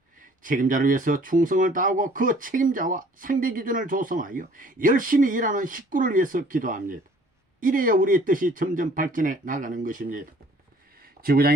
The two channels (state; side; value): normal; both; correlation 0.55